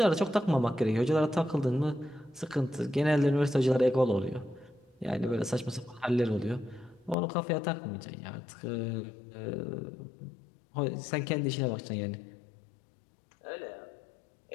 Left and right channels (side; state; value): right; drops out; at 7.2 s